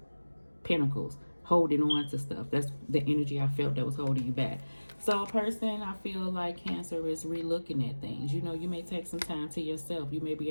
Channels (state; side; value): inverted; both; correlation -1.00